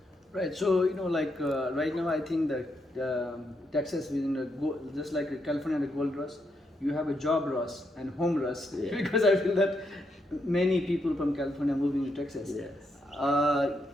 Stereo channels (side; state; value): both; normal; correlation 0.80